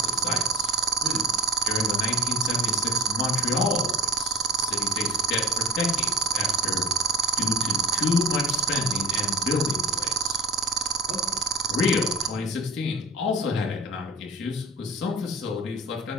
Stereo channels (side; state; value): both; normal; correlation 0.34